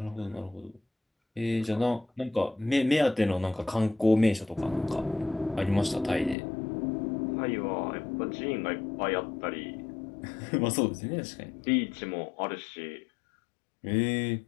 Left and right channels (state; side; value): drops out; right; at 6.4 s